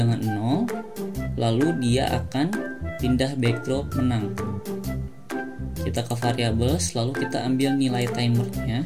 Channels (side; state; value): both; identical; correlation 1.00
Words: 0, lalu dia akan pindah backdrop menang. Kita ke variables, lalu kita ambil nilai timernya,